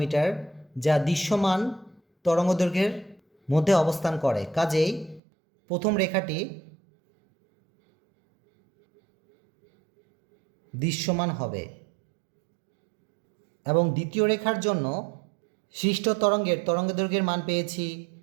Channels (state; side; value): drops out; left; at 5.2 s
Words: যা দৃশ্যমান তরঙ্গদৈর্ঘ্যের মধ্যে অবস্থান করে। কাজেই প্রথম রেখাটি দৃশ্যমান হবে এবং দ্বিতীয় রেখার জন্য সৃষ্ট তরঙ্গের তরঙ্গদৈর্ঘ্যের মান পেয়েছি